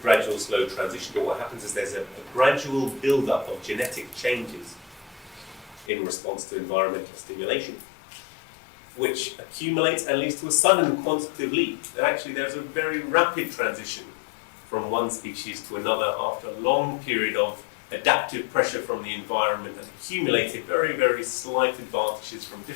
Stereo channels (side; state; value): right; drops out; at 5.9 s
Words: slow transition, but what happens is there's a gradual build-up of genetic changes in response to environmental stimulation, which accumulates and leads to a sudden quantitative leap. And actually, there's a very rapid transition from one species to another after a long period of adaptive pressure from the environment and accumulated very, very slight advantages from